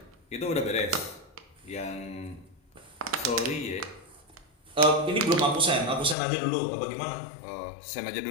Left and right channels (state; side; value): drops out; right; at 6.2 s